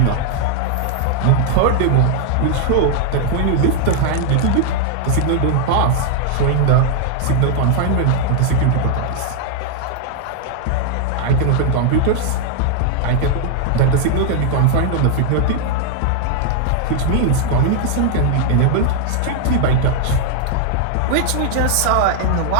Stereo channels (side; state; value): both; different; correlation 0.00